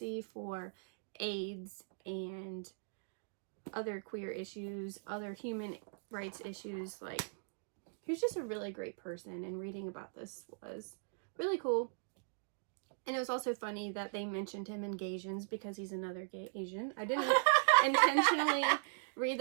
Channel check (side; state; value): left; silent; digital silence